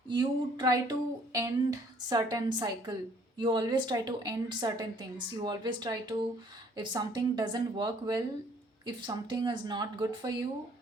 You try to end certain cycle, you always try to end certain things, you always try to, if something doesn't work well, if something is not good for you,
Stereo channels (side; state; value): both; normal; correlation 0.60